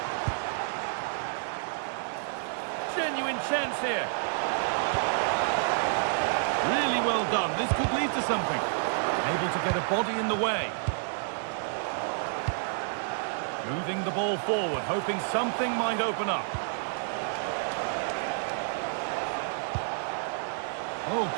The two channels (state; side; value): silent; left; digital silence